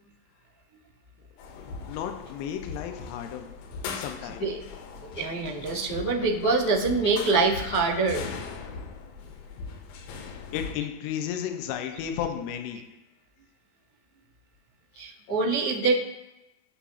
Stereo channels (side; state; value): right; late; 22 ms